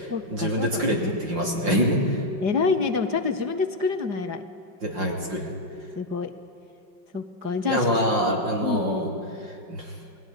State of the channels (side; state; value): left; late; 5.7 ms